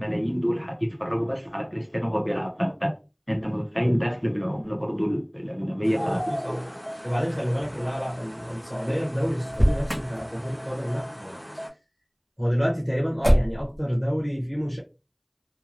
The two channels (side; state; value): both; identical; correlation 1.00